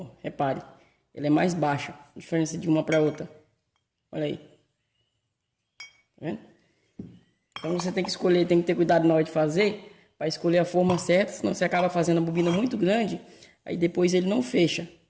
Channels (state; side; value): identical; both; correlation 1.00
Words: repare, ela é mais baixa, a diferença de uma para outra. Olha aí. Tá vendo? Então você tem que escolher, tem que ter cuidado na hora de fazer, para escolher a forma certa, senão você acaba fazendo a bobina muito grande, aí depois ele não fecha.